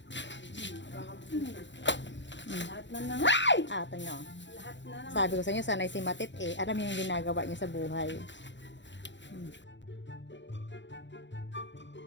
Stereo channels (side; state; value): right; late; 0.53 ms